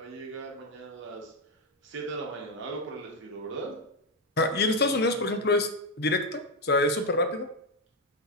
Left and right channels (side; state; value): both; normal; correlation 0.05